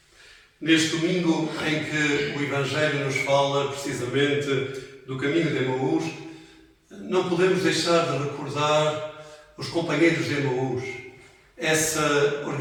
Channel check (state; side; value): identical; both; correlation 1.00